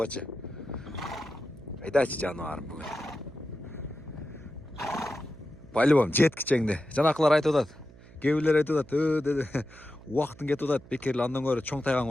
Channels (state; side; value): noise; right; hum, 21 dB below the sound